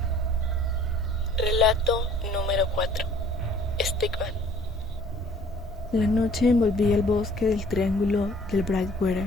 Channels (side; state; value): both; normal; correlation 0.55